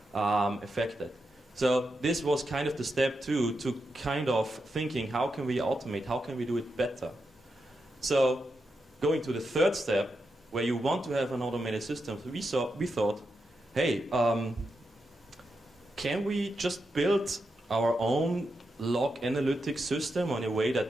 affected. So this was kind of the step 2 to kind of thinking, how can we automate, how can we do it better? So going to the third step, where you want to have an automated system, we thought, hey, can we just build our own log analytics system in a way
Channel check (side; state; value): both; normal; correlation 0.86